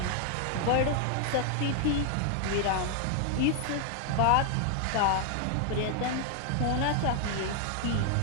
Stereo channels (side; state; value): both; different; correlation 0.00